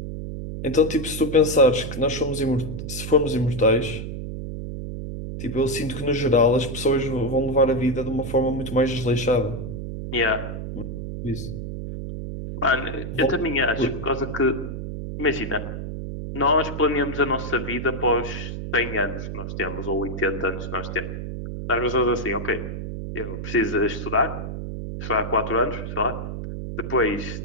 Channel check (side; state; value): right; noise; hum, 6 dB below the sound